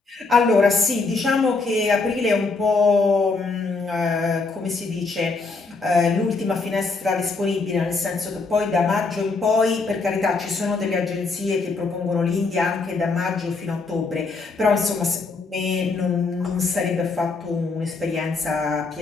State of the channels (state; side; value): quieter; right; 4.0 dB